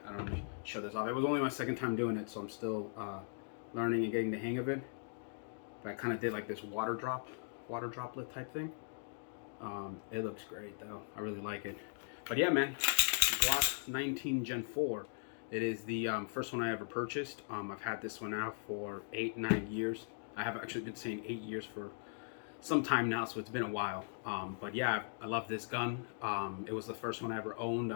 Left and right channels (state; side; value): silent; right; digital silence